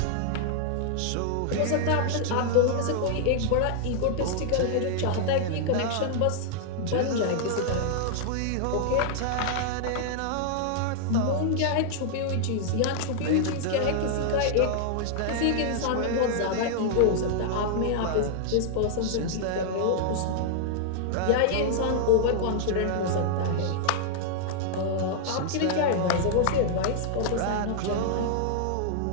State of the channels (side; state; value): both; different; correlation -0.01